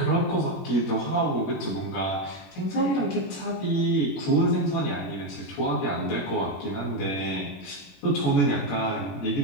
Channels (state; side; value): late; right; 21 ms